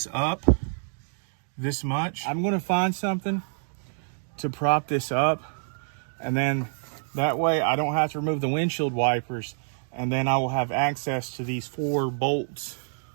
up this much. I'm going to find something to prop this up, and then that way I don't have to remove the windshield wipers, and then I will have access to these 4 bolts,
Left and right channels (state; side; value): silent; left; digital silence